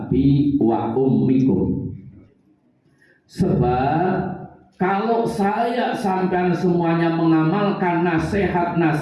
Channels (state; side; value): identical; both; correlation 1.00